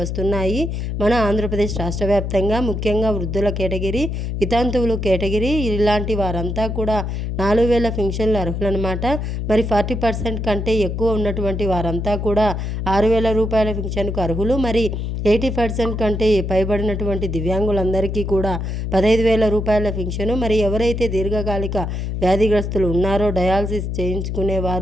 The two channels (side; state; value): left; noise; hum, 3 dB below the sound